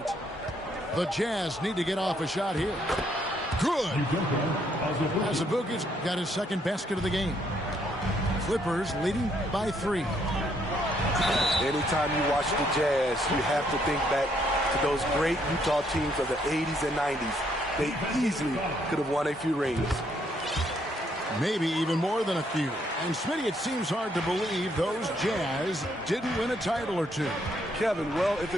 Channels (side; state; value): both; normal; correlation 0.71